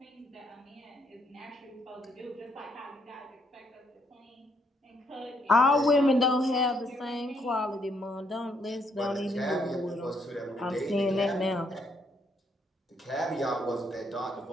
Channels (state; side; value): normal; both; correlation 0.72